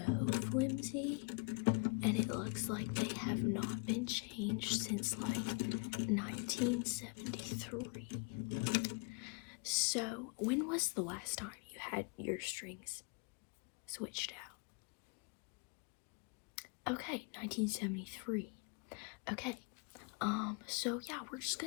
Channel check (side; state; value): right; quieter; 33.8 dB